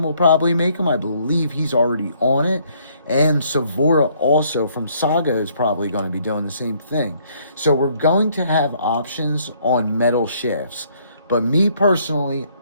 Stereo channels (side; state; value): both; inverted; correlation -0.66